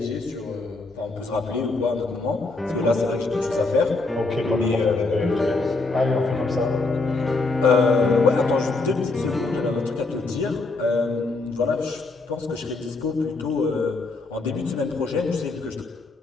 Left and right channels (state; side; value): quieter; right; 3.5 dB